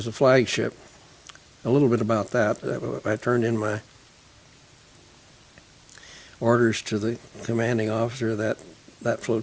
a flagship. A little bit about that. I turned in my orders to the commanding officer of that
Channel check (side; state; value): both; identical; correlation 1.00